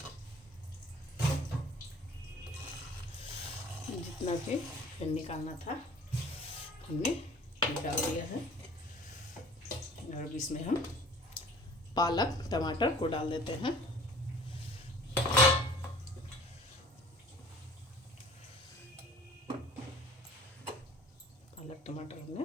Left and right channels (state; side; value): normal; both; correlation 0.48